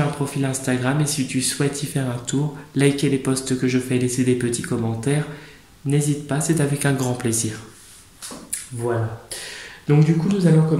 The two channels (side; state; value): both; identical; correlation 1.00